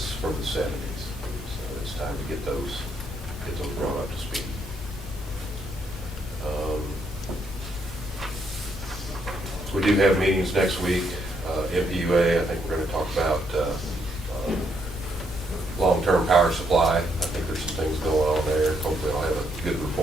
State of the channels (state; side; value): normal; both; correlation 0.74